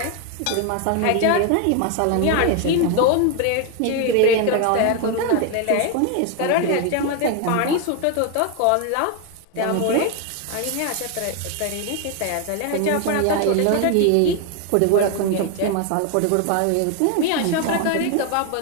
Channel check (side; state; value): both; different; correlation 0.01